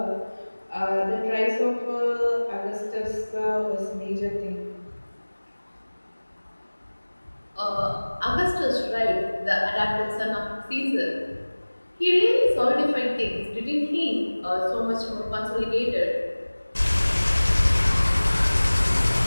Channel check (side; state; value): both; inverted; correlation -1.00